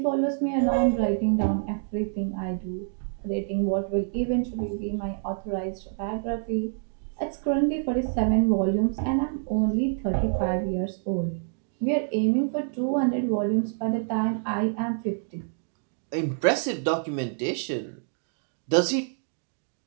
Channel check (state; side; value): silent; left; digital silence